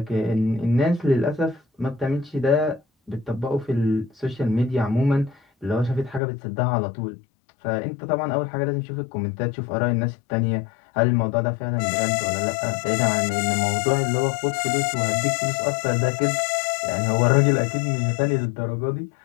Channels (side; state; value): right; drops out; at 6.2 s